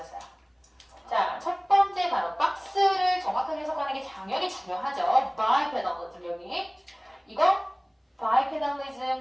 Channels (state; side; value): identical; both; correlation 1.00